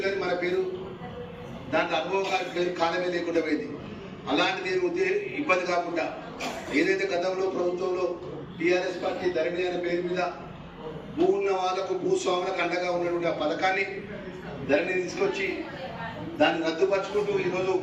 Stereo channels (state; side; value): identical; both; correlation 1.00